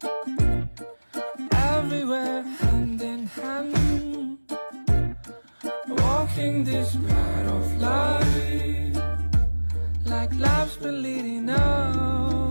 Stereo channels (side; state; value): both; inverted; correlation -1.00